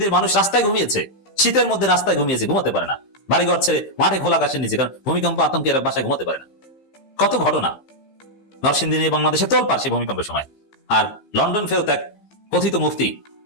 মানুষ রাস্তায় ঘুমিয়েছে, শীতের মধ্যে রাস্তায় ঘুমিয়েছে, ঘুমাতে পারে না, বাড়িঘর ছেড়ে মাঠে খোলা আকাশের নিচে, কারণ ভূমিকম্প আতঙ্কে এরা বাসায় ঘুমাতে পারে না। কত ঘটনা নরসিংদী নিয়ে বাংলাদেশে তোলপাড় সেই ভূমিকম্পের সময়। আর লন্ডন ফেরত এক কথিত মুফতি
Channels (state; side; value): late; right; 15 ms